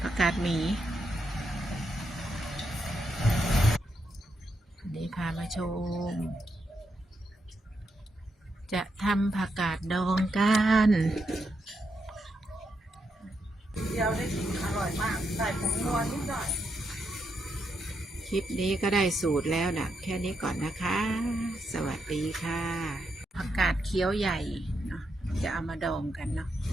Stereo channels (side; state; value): both; normal; correlation 0.82